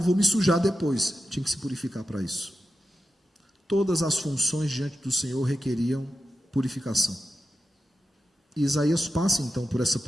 vou me sujar depois. Tinha que se purificar para isso. Todas as funções diante do Senhor requeriam purificação. E Isaías passa então por essa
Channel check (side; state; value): both; normal; correlation 0.91